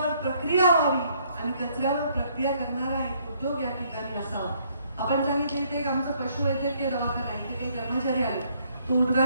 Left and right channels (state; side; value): inverted; both; correlation -0.67